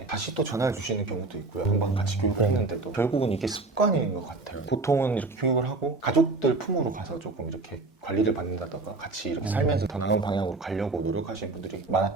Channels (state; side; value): quieter; left; 3.4 dB